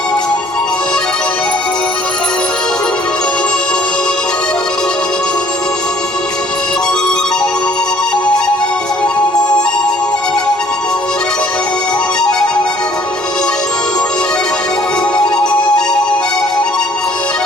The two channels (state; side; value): normal; both; correlation 0.57